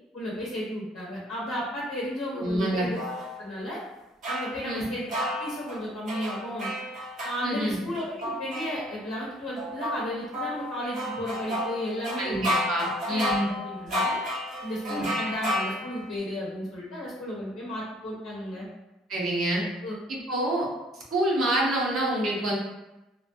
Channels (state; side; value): normal; both; correlation 0.58